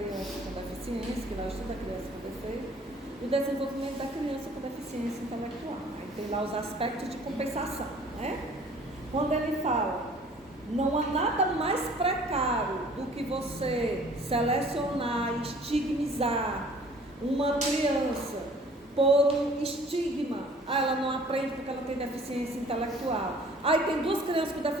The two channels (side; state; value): both; normal; correlation 0.52